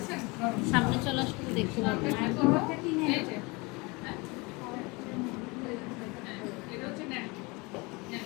সামনে চলে আসলে দেখতে পাবো। এই যে হ্যাঁ, এটা হচ্ছে নেন নেন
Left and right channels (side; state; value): right; quieter; 26.3 dB